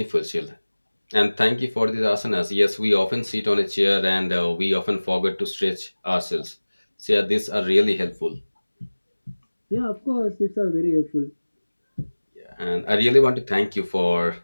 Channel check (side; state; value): both; inverted; correlation -1.00